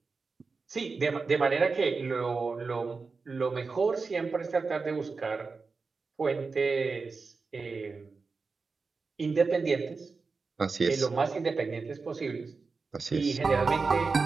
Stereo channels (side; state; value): left; quieter; 4.4 dB